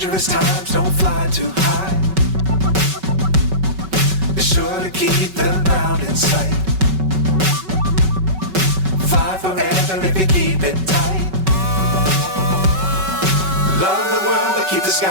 Times don't fly too high. Be sure to keep the ground in sight. Fly forever if you keep it tight. Love the world but keep the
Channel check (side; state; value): left; late; 5.3 ms